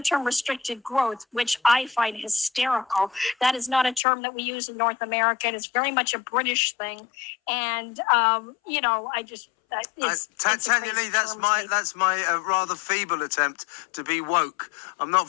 restricted growth, which I find hysterical. That is not a term that we use in North America. It's very much a British thing, and I just. Tanyalee, that's my rather feeble attempt to be woke. I'm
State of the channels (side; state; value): right; drops out; at 4.0 s